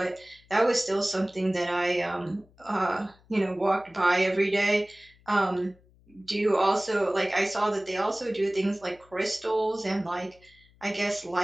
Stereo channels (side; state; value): left; noise; hum, 29 dB below the sound